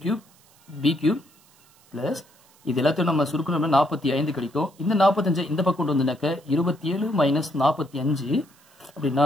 cube B cube plus இது எல்லாத்தையும் நம்ம சுருக்கணும்னா 45 கிடைக்கும். இந்த 45 இந்த பக்கம் கொண்டு வந்தனாக்க 27 மைனஸ் 45 அப்படின்னா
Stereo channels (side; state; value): right; noise; hiss, 30 dB below the sound